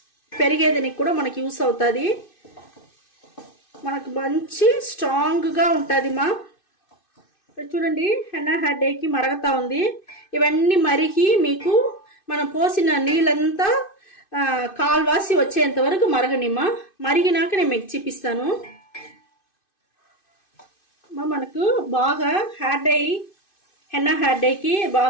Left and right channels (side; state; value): right; late; 2.6 ms